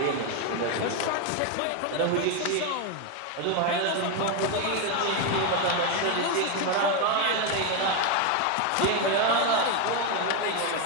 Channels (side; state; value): both; different; correlation 0.02